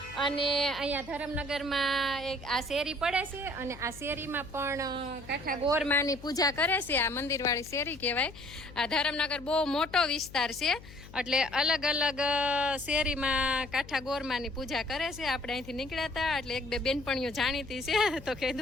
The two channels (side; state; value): left; noise; hum, 17 dB below the sound